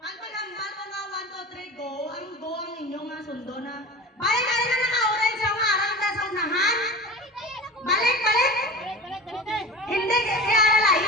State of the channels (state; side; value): normal; both; correlation 0.33